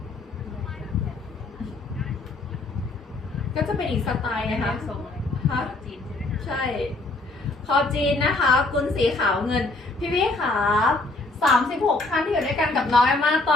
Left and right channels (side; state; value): right; quieter; 3.1 dB